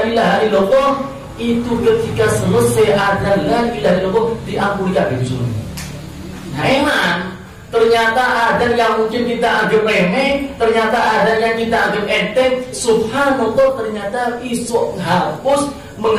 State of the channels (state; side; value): identical; both; correlation 1.00